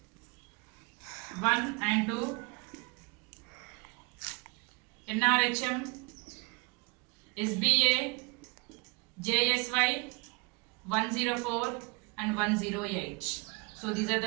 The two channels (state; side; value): quieter; left; 29.1 dB